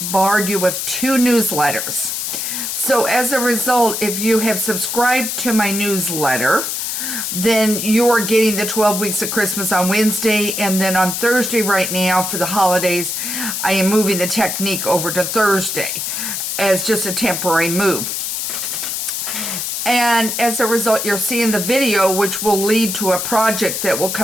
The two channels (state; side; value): noise; left; hiss, 3 dB below the sound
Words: you with 2 newsletters. So as a result, if you have subscribed to my newsletter, then you're getting the 12 weeks of Christmas on Wednesday, and then on Thursday right now for the holidays, I am moving the technique over to Thursday as just a temporary move. And as a result, you're seeing the video, which will lead to a project that will